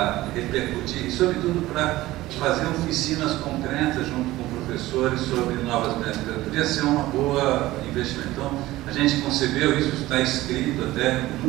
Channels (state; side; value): quieter; left; 17.2 dB